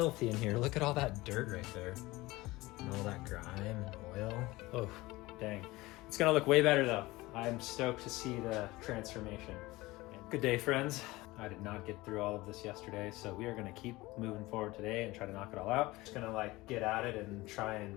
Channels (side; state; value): right; quieter; 20.1 dB